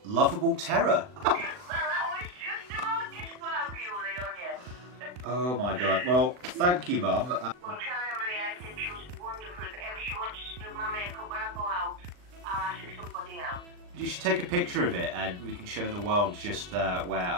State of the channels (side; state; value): left; late; 39 ms